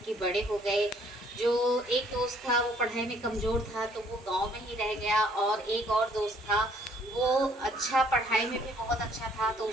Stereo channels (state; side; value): normal; both; correlation 0.62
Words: के बड़े हो गए। जो एक दोस्त था वो पढ़ाई में कमज़ोर था, तो वो गांव में ही रह गया। और एक और दोस्त था, वो अच्छा पढ़ाई में भी बहुत अच्छा था, तो